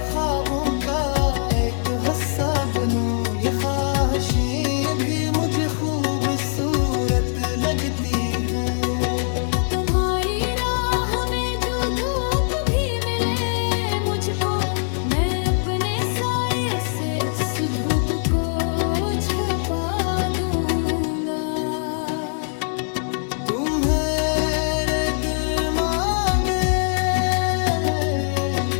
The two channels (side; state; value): right; silent; digital silence